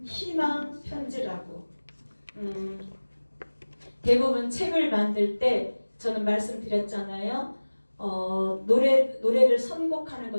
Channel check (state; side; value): inverted; both; correlation -1.00